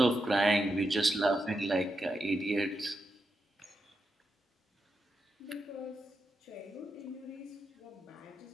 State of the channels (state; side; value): normal; both; correlation 0.86